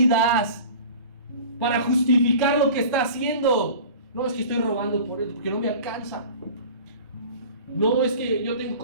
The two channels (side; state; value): both; inverted; correlation -0.40